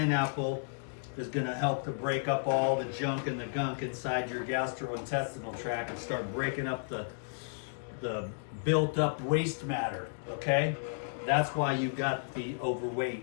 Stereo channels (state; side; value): silent; right; digital silence